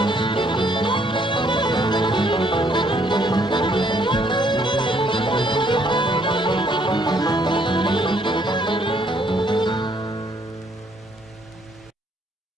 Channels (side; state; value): both; normal; correlation 0.67